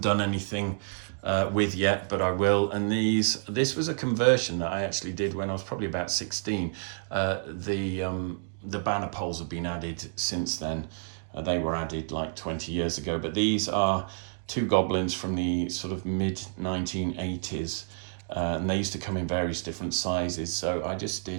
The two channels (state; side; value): silent; left; digital silence